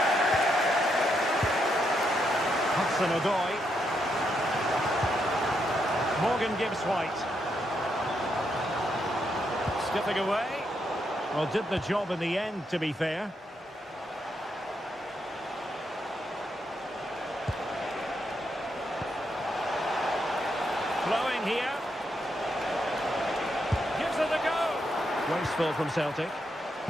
Hudson-Odoi. Morgan Gibbs-White. Skipping away. Well, did the job in the end, to be fair. Flowing here. Gives it a go. Wasteful from Celtic.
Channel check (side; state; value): both; normal; correlation 0.80